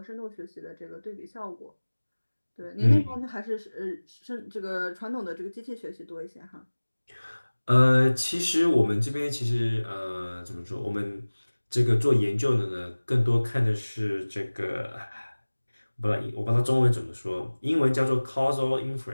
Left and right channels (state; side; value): inverted; both; correlation -1.00